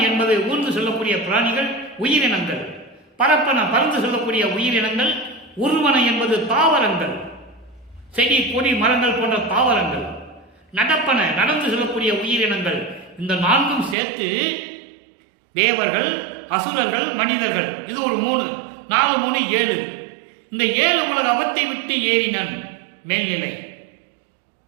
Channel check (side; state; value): left; drops out; at 14.0 s